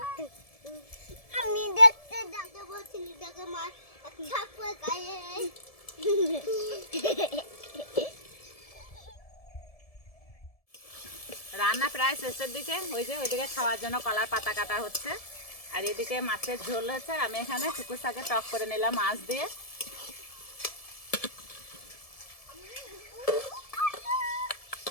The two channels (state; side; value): late; right; 1.7 ms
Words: আমি দেখতে যাকে বলছিলি তাকে মার ছাপে গায়ে। রান্না প্রায় শেষের দিকে, ওই যে ওইদিকে খাওয়ার জন্য কলার পাতা কাটা হচ্ছে, আর এদিকে মাছের ঝোল হচ্ছে। আমি এখানে শুকুর শাকে টক করে নিলাম মাছ দিয়ে।